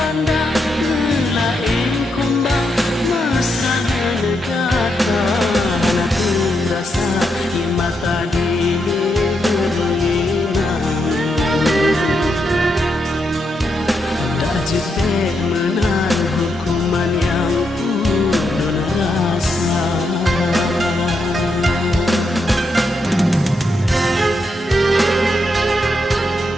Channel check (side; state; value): both; normal; correlation 0.82